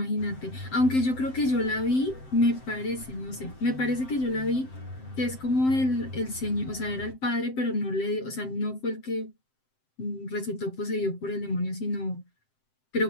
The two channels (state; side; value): late; right; 7.7 ms